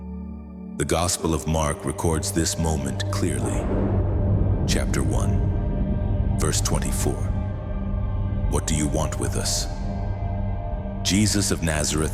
The Gospel of Mark records this moment clearly. Chapter 1, verse 24. What do you want with us? Jesus of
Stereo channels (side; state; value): both; identical; correlation 1.00